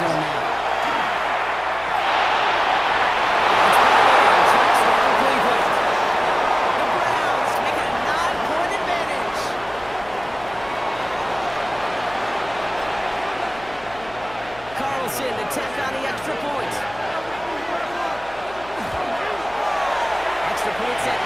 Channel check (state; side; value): noise; left; hum, 21 dB below the sound